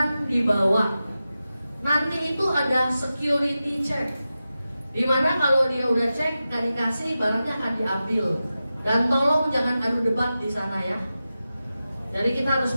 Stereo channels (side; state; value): both; inverted; correlation -0.93